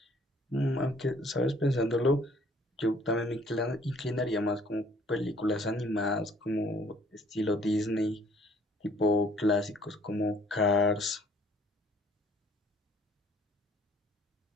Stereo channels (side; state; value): both; normal; correlation 0.58